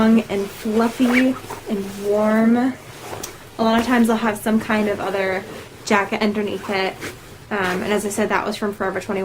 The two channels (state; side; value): identical; both; correlation 1.00